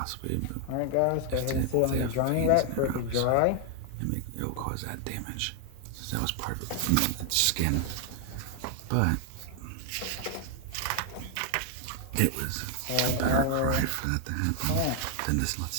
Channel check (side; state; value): both; different; correlation 0.00